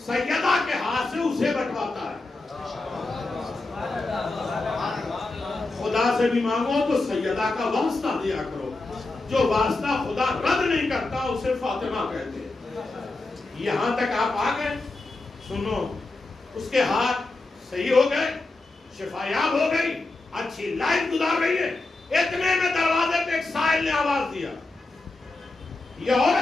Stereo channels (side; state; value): right; quieter; 3.2 dB